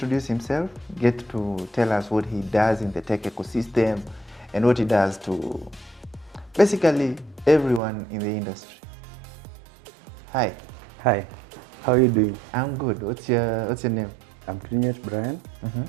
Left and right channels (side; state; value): left; drops out; at 7.8 s